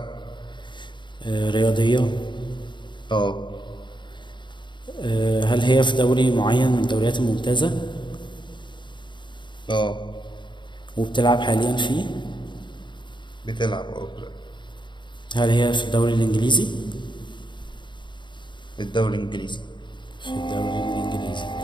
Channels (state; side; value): late; right; 0.23 ms